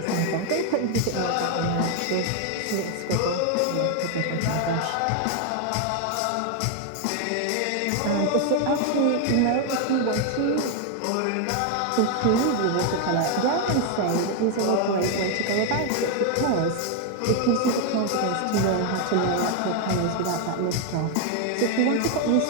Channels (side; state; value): both; different; correlation 0.01